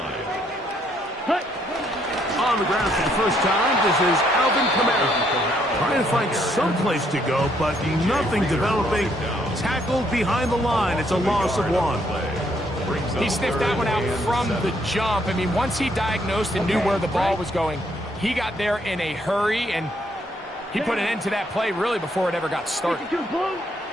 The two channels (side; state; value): both; normal; correlation 0.71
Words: On the ground for the first time, this is Alvin Kamara. Trying to find some place to go, but nothing developing. Tackled behind the line. It's a loss of 1. He sniffed that one out from the jump. I mean, once he diagnosed and knew where the ball was going, he got there in a hurry, and he put an end to that play really before it ever got started.